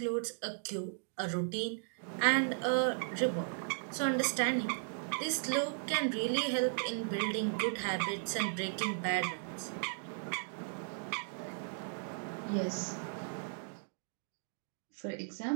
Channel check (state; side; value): silent; left; digital silence